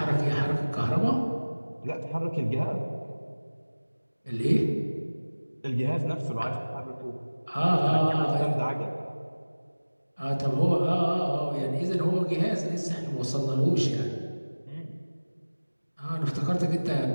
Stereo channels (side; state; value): both; inverted; correlation -1.00